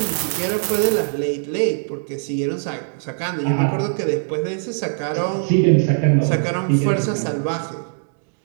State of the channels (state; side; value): silent; left; 65 dB below the other